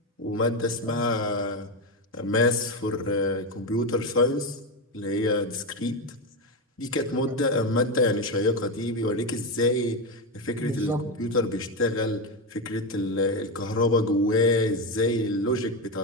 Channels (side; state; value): both; normal; correlation 0.12